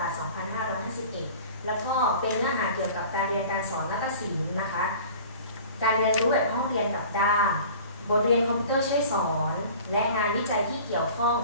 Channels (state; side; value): inverted; both; correlation -0.43